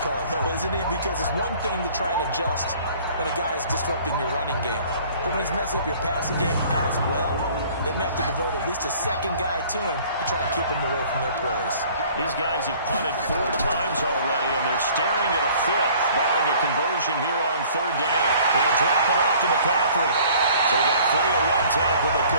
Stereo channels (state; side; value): inverted; both; correlation -0.53